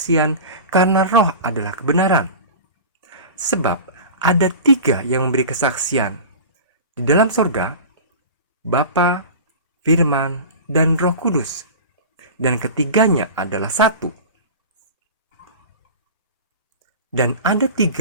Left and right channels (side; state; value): both; inverted; correlation -0.33